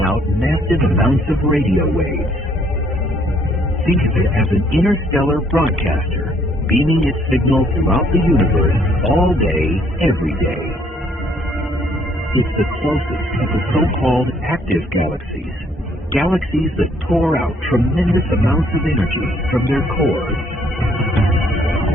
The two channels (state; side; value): normal; both; correlation 0.65